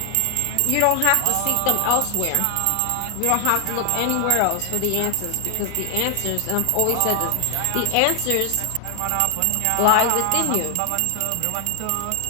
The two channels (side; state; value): both; different; correlation 0.00